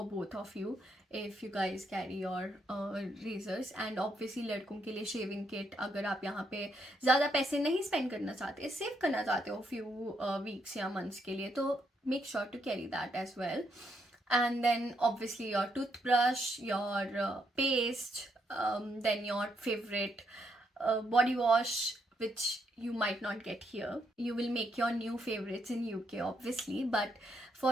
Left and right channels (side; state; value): both; normal; correlation 0.76